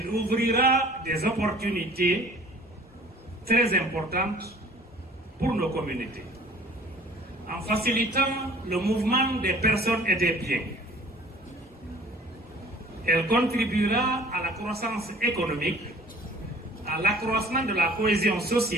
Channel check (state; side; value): normal; both; correlation 0.50